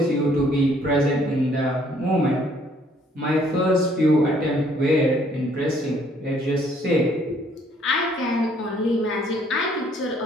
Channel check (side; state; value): both; normal; correlation 0.63